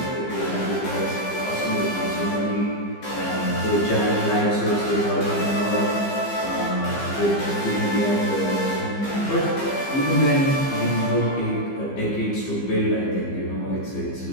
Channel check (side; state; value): right; late; 15 ms